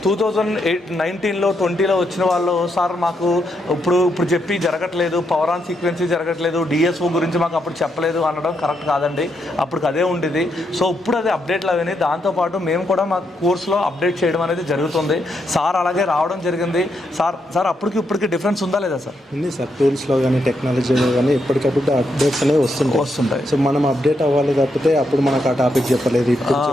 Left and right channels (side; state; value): both; normal; correlation 0.80